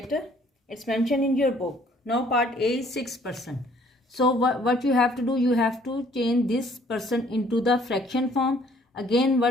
It's mentioned in your book. Now part A is 6%. So what you have to do, you have to change this percent into the fraction form. Again,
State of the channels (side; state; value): both; normal; correlation 0.60